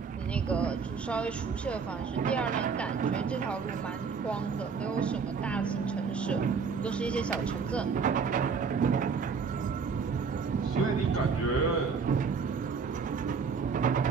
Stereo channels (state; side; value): quieter; left; 5.5 dB